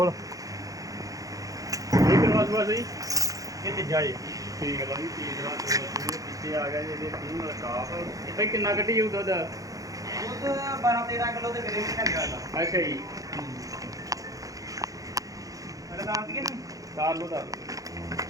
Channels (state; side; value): late; left; 0.17 ms